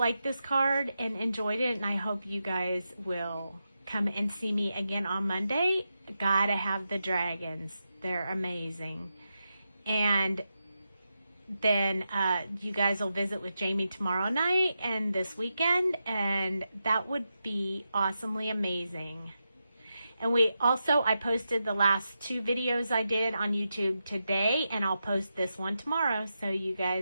this card and enjoyed it, and I hope you guys will come and see me again on Monday. Gotta have the dragons. They're amazing. And then you guys will visit with Jamie tomorrow night and this weekend, and that would be awesomely amazing. And I posted the last 2 videos I did on YouTube today, and I'll post this one tomorrow. So you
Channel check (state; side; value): inverted; both; correlation -0.88